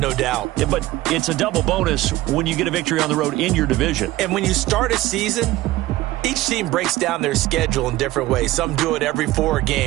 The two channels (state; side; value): quieter; left; 17.1 dB